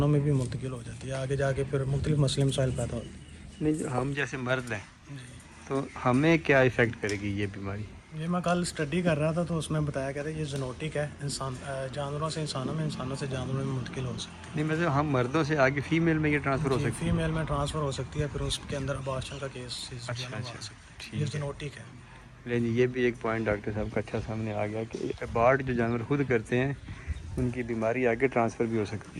میں بھی منتقل ہو جاتی ہے، آگے جا کے پھر مختلف مسئلے مسائل پیدا ہوتے ہیں۔ نہیں، ہم جیسے مرد ہیں تو ہمیں کیا ایفیکٹ کرے گی یہ بیماری؟ یہ میں کل اسٹڈی کر رہا تھا تو اس میں بتایا گیا تھا یہ زونوٹک ہے، جانوروں سے انسانوں میں، انسانوں سے جانوروں میں منتقل ہو سکتی ہے۔ نہیں مطلب ہم مردوں سے آگے فیمیل میں یہ ٹرانسفر ہو سکتی ہے؟ فیمیل میں ٹرانسفر ہو سکتی ہے، پھر اس کے اندر ابارشن کا کیس اچھا ٹھیک یہ زونوٹک ہے۔ لیکن یہ بھی ایک پوائنٹ ڈاکٹر صاحب کا اچھا سامنے آ گیا کہ ابارٹ جو جانور خود کرتے ہیں ان کی بیماری آگے ٹرانسفر بھی ہو سکتی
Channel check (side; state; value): both; identical; correlation 1.00